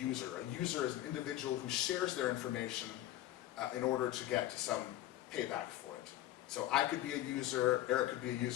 A user is an individual who shares their information in order to get some payback for it. So I could be a user, Eric could be a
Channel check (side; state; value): right; quieter; 14.0 dB